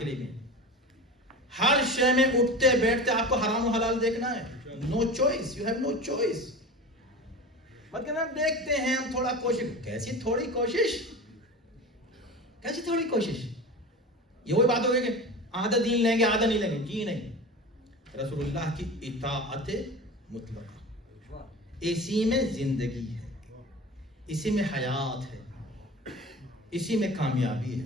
لیے بھی. ہر شے میں اٹھتے بیٹھتے آپ کو حرام و حلال دیکھنا ہے. No choice, you have no choice. مت کہنا دیکھتے ہیں ہم تھوڑا کوشش. کیسی تھوڑی کوشش, کیسی تھوڑی کوشش؟ یہ وہی بات ہو گئی کہ آدھا دین لیں گے آدھا نہیں لیں گے. جی نہیں, رسول اللہ کی اطاعت مطلقہ, اسی میں زندگی ہے, اسی میں حیات ہے, اسی میں کامیابی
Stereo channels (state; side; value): normal; both; correlation 0.32